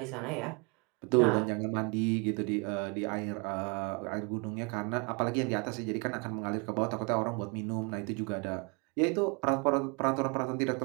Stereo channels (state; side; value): quieter; left; 32.2 dB